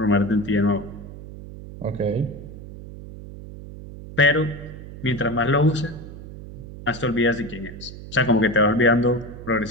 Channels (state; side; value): noise; right; hum, 13 dB below the sound